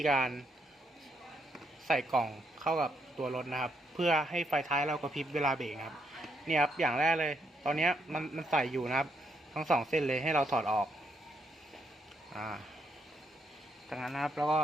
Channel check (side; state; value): both; normal; correlation 0.76